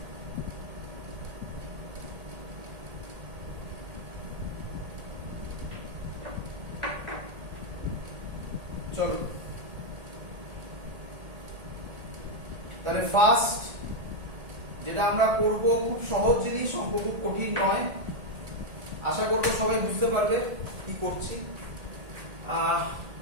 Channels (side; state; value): left; late; 1.8 ms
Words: চলো তাহলে ফার্স্ট যেটা আমরা করব খুব সহজ জিনিস, অঙ্ক খুব কঠিন নয়, আশা করবো সবাই বুঝতে পারবে কি করছি।